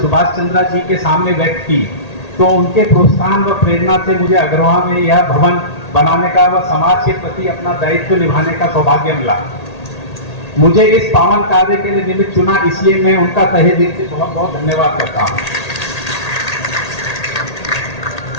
सुभाष चंद्र जी के सामने व्यक्त की, तो उनके प्रोत्साहन व प्रेरणा से मुझे अग्रवाल में यह भवन बनाने का व समाज के प्रति अपना दायित्व निभाने का सौभाग्य मिला। मुझे इस पावन कार्य के लिए निमित्त चुना, इसलिए मैं उनका तहे दिल से बहुत बहुत धन्यवाद करता हूँ।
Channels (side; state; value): right; late; 1.8 ms